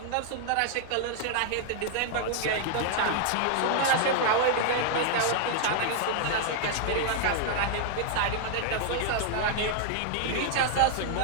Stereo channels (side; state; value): both; different; correlation 0.00